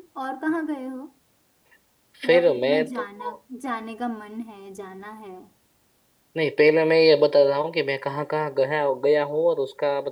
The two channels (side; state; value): both; identical; correlation 1.00